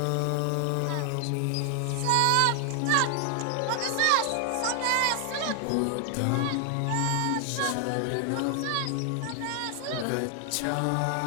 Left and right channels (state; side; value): different; both; correlation 0.00